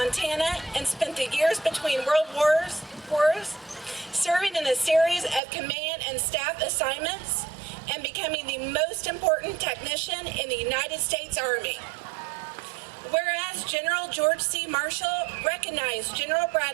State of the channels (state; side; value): drops out; left; at 5.4 s